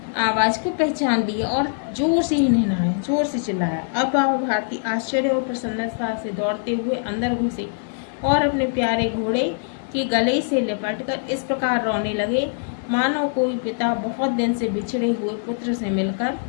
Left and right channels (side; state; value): right; silent; digital silence